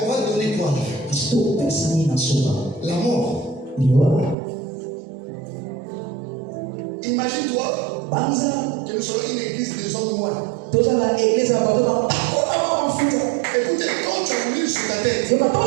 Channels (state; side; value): drops out; left; at 4.4 s